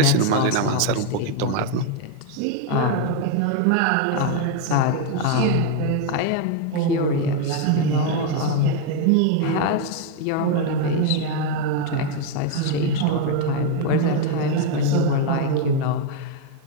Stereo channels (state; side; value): different; both; correlation 0.01